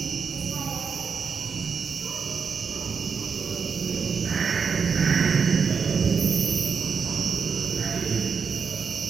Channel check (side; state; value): left; quieter; 5.9 dB